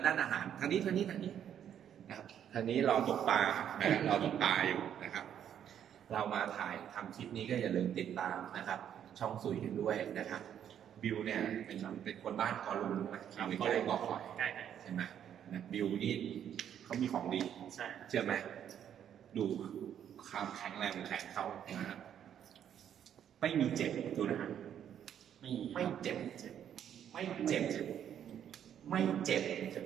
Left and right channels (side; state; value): left; quieter; 9.5 dB